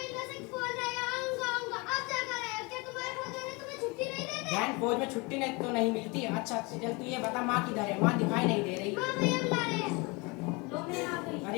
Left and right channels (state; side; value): quieter; right; 27.6 dB